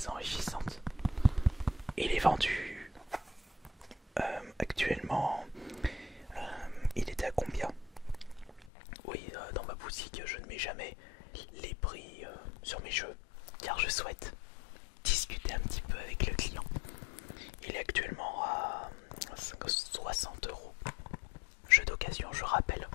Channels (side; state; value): right; drops out; at 8.7 s